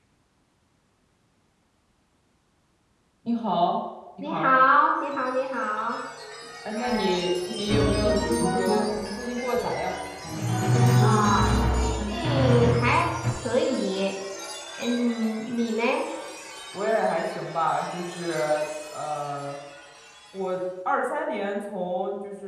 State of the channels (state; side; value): identical; both; correlation 1.00